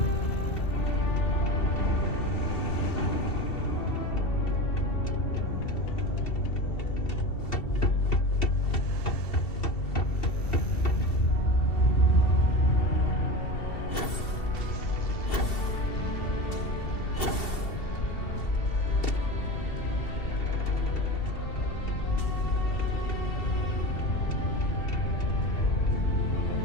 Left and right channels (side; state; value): right; late; 2.7 ms